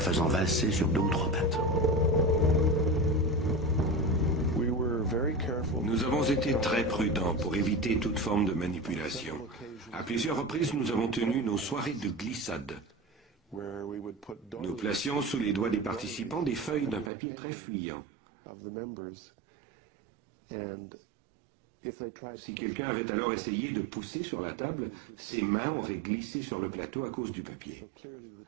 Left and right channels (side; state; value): left; drops out; at 17.1 s